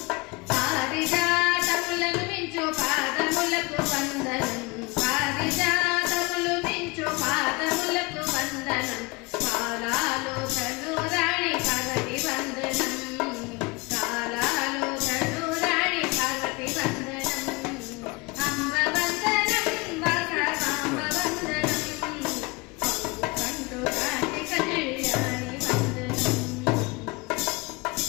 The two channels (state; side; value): quieter; right; 26.1 dB